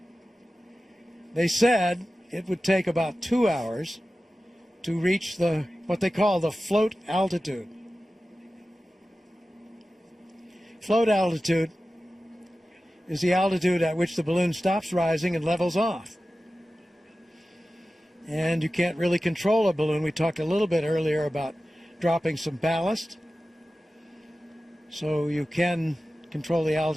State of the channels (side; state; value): both; normal; correlation 0.95